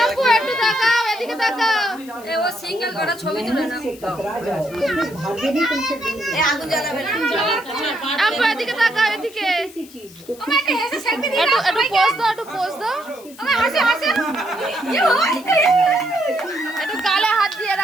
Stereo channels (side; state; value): left; noise; hiss, 21 dB below the sound